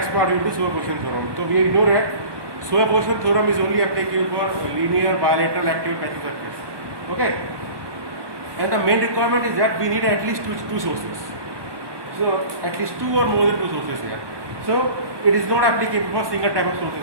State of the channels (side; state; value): left; late; 1.2 ms